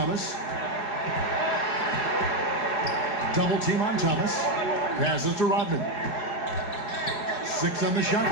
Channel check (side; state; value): right; late; 4.8 ms